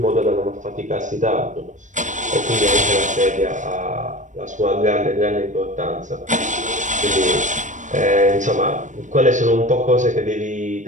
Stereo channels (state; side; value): late; left; 0.36 ms